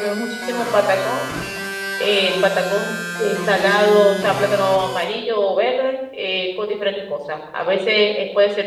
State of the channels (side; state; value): both; identical; correlation 1.00